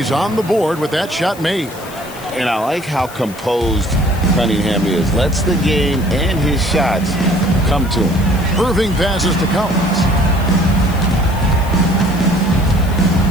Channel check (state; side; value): noise; left; hiss, 18 dB below the sound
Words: on the board with that shot made. And I like how composed Cunningham is. Lets the game and his shots come to him. Irving passes to Collins.